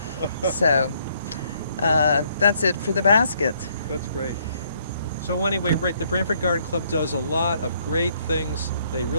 So that's it for the baskets. That's great. So anyway, right, the Branford Garden Club does a lot of great things. They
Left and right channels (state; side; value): inverted; both; correlation -0.68